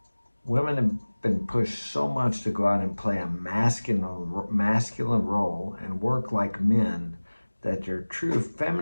Women have been pushed so much to go out and play a masculine role and work like men that your true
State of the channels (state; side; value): inverted; both; correlation -1.00